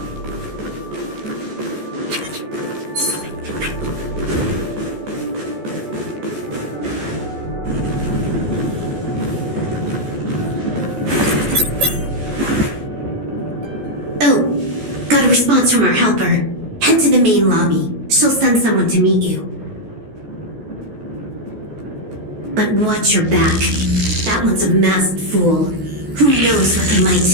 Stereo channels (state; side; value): late; left; 14 ms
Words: Oh, got a response from our helper. Head to the main lobby. She'll send someone to meet you. But watch your back. That one's a masked fool. Who knows what they